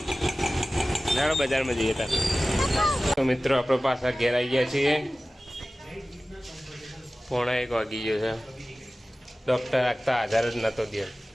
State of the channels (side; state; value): both; normal; correlation 0.96